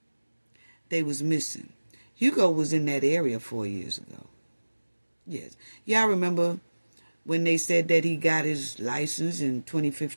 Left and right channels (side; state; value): both; inverted; correlation -1.00